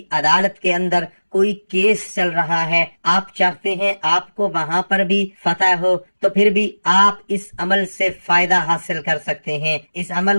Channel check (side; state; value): both; inverted; correlation -1.00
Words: عدالت کے اندر کوئی کیس چل رہا ہے، آپ چاہتے ہیں آپ کو وہاں پر بھی فتح ہو، تو پھر بھی آپ اس عمل سے فائدہ حاصل کر سکتے ہیں، اس